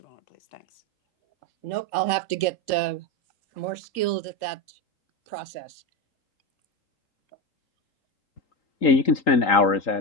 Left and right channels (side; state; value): right; late; 3.8 ms